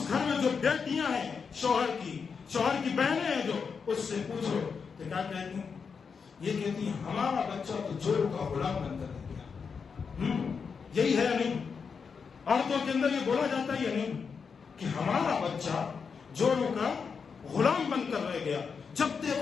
گھر میں جو بیٹیاں ہیں شوہر کی بہنیں ہیں جو, اس سے پوچھو تو کیا کہتی ہیں؟ یہ کہتی ہیں ہمارا بچہ تو جوڑوں کا غلام بن کر رہ گیا. یہی ہے یا نہیں؟ عورتوں کے اندر یہ بولا جاتا ہے یا نہیں کہ ہمارا بچہ جوڑوں کا غلام بن کر رہ گیا. جب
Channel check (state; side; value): quieter; right; 5.8 dB